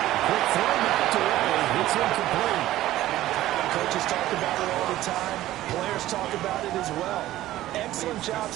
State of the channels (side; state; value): left; quieter; 14.9 dB